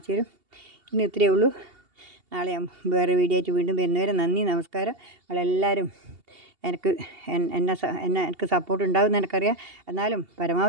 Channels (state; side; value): late; left; 2.8 ms